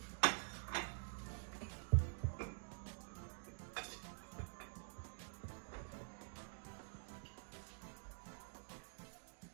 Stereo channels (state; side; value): silent; left; digital silence